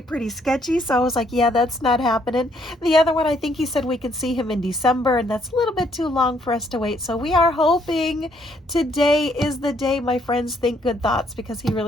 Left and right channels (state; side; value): normal; both; correlation 0.69